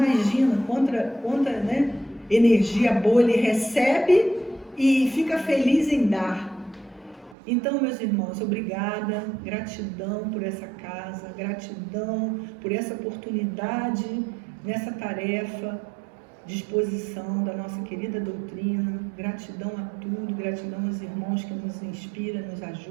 quanta né, energia boa ele recebe e fica feliz em dar. Então, meus irmãos, obrigada, gratidão por essa casa, gratidão por essa oportunidade nessa tarefa de exposição da nossa querida doutrina, gratidão a tudo, gratidão aos irmãos que nos inspiram, nos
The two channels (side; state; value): left; drops out; at 7.4 s